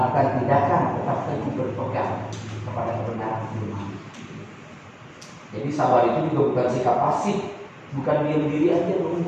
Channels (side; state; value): both; identical; correlation 1.00